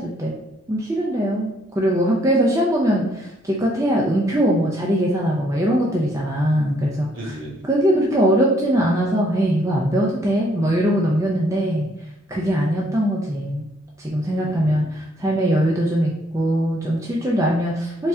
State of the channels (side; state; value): both; normal; correlation 0.68